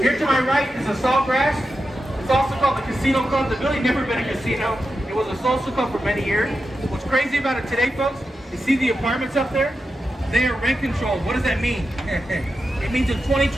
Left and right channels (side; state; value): both; normal; correlation 0.90